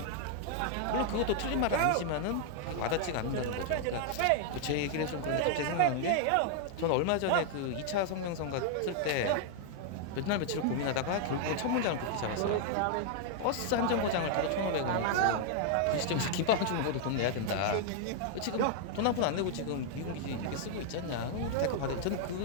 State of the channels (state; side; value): different; both; correlation 0.00